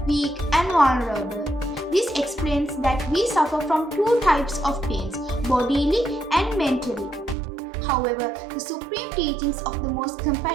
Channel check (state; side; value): drops out; left; at 7.4 s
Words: weak and vulnerable. This explains that we suffer from two types of pains, bodily and mentally. However, the supreme teachings of the most